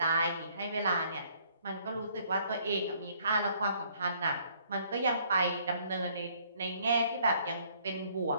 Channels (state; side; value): inverted; both; correlation -0.63